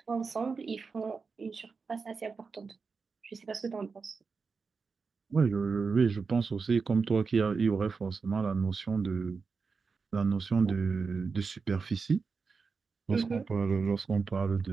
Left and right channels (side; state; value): left; quieter; 4.9 dB